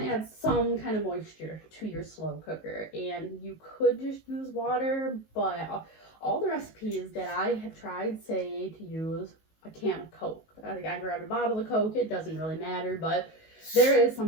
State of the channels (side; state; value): right; late; 19 ms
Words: to add some kind of moisture to your slow cooker, and you could just use water, but all the recipes that I have tried say to use a can of Coke. I grabbed a bottle of Coke. It doesn't really matter, but there is